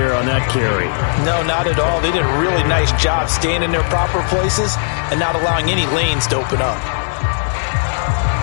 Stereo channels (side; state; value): right; silent; digital silence